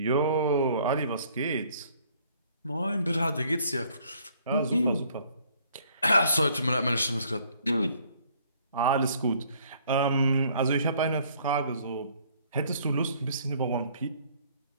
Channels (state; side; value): inverted; both; correlation -0.61